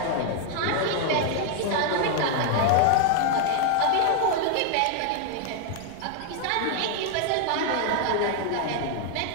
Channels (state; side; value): different; both; correlation 0.00